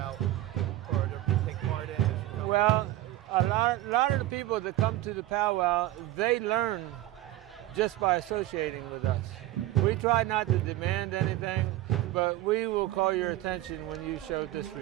or to take part in? Well, a lot of the people that come to the powwow, they learn just by associating with us. We try not to demand anything, but we will call your attention when you show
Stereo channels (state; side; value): quieter; left; 15.4 dB